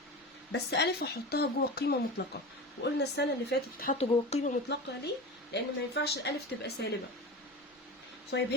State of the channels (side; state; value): both; normal; correlation 0.28